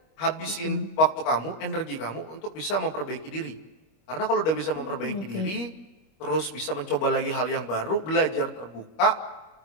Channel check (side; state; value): right; late; 25 ms